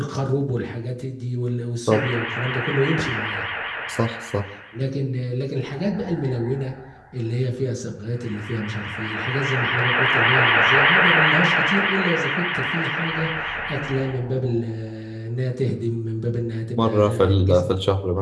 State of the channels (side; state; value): both; identical; correlation 1.00